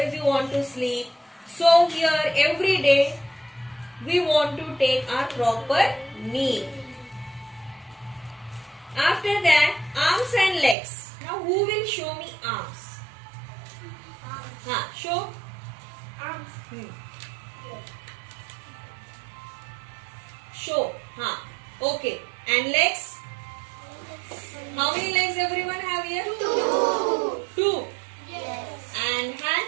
you want to sleep. So here every day we want to take our proper meal. After that, arms and legs. Now who will show me arms? Show. Show. Okay. And legs? How many legs everyone have here? Two. Yes. And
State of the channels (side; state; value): left; drops out; at 10.8 s